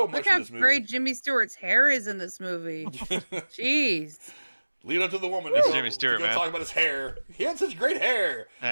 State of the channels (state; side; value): inverted; both; correlation -1.00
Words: much in this movie. Look how great Jimmy Stewart's hair is in this movie. Jeez. Leave it up to the woman That's Jimmy Stewart, man. Talk about his hair. He had such great hair.